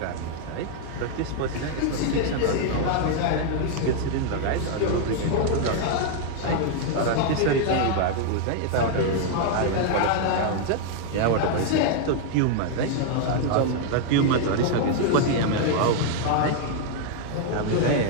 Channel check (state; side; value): different; both; correlation 0.00